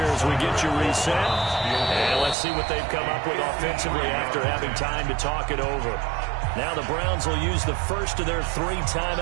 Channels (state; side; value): drops out; left; at 2.4 s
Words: as we get you reset. And let's see what they've come up with offensively after having time to talk it over. Now the Browns will use the first of their 3